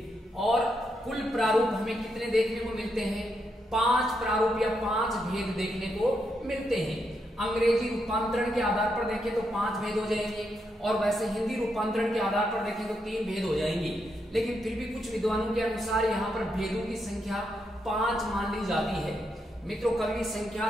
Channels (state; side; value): normal; both; correlation 0.81